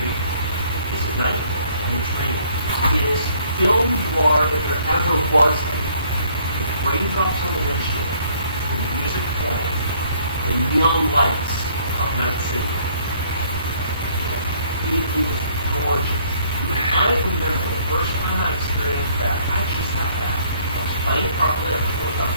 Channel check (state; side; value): inverted; both; correlation -0.62